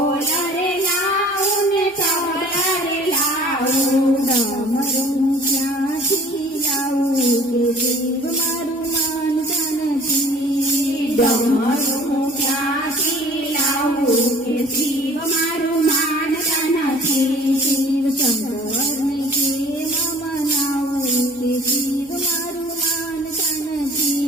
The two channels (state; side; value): normal; both; correlation 0.50